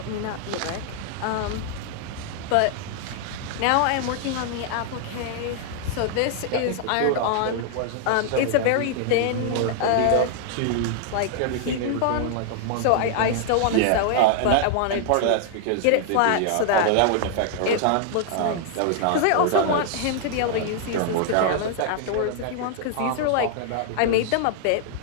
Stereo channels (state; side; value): different; both; correlation 0.00